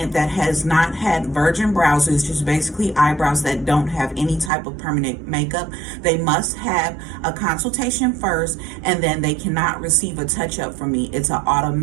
that has not had virgin brows, is just basically eyebrows that don't have any type of permanent makeup, they must have a consultation first, and then they cannot receive a touch-up from me. It's an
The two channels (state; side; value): drops out; left; at 4.5 s